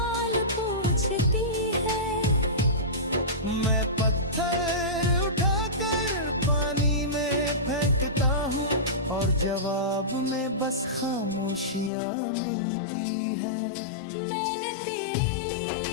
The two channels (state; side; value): drops out; right; at 11.9 s